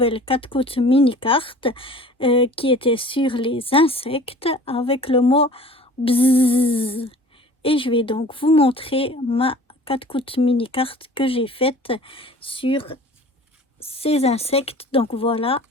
4 coups mini carte qui était sur les insectes avec le mot bzzz. Et je vais donc vous montrer ma 4 coups mini carte que j'ai faite sur ces insectes. Donc voilà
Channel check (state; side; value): normal; both; correlation 0.45